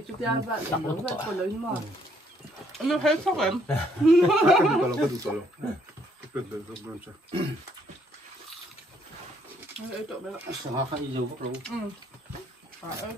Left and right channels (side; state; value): both; normal; correlation 0.68